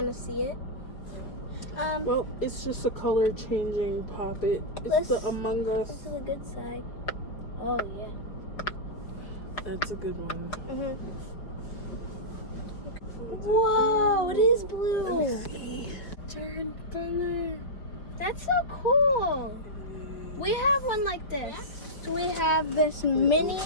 of see it. Well, it's just a color changing poppet. It's the Among This Us. is a good side. Oh yeah. That's a good one. Whoa, it is blue. See. Turn color. That's so cool. We have one like this. We have this mini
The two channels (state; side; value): late; right; 5.1 ms